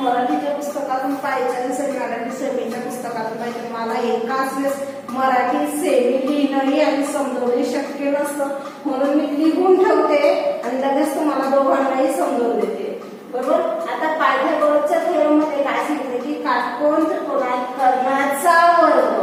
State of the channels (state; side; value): identical; both; correlation 1.00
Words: मराठीच्या पुस्तकातून पाहिजे आणि मराठी सेमीच्या पुस्तकातून पाहिजे. मला एकाच वेळेस मराठी सेमी लिहिणंही आणि समजवणे शक्य नसतं म्हणून मी लिहून ठेवते आणि लगेच तुम्हाला दोघांनाही समजवून देते. बरोबर. आता पायथागोरसच्या थेरम मध्ये काय सांगितलं की काटकोन त्रिकोणात कर्णाचा वर्ग